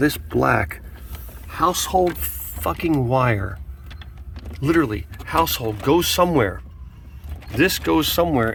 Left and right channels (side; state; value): both; identical; correlation 1.00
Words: black household fucking wire, literally household goes somewhere. This goes